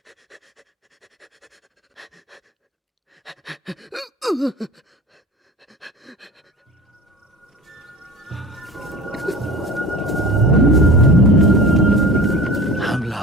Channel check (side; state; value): both; normal; correlation 0.37